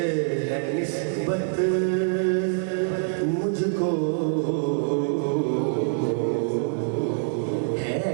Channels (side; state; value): left; silent; 62 dB below the other